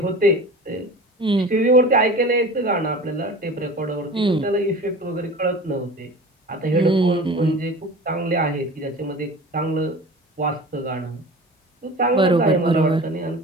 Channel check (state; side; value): normal; both; correlation 0.37